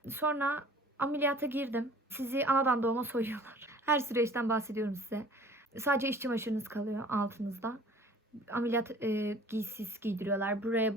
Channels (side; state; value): both; normal; correlation 0.49